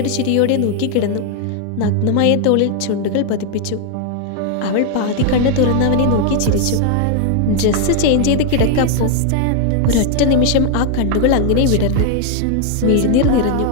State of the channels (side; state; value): both; different; correlation 0.00